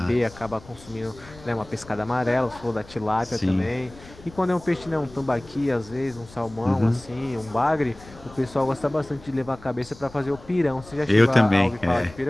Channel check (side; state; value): left; noise; rumble, 21 dB below the sound